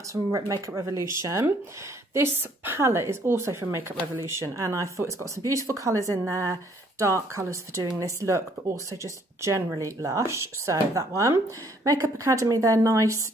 from Makeup Revolution. This palette is also from Makeup Revolution, and I thought it's got some beautiful colours in there, dark colours for doing this look, but also just generally lush. So that one. Makeup Academy, their nice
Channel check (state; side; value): normal; both; correlation 0.64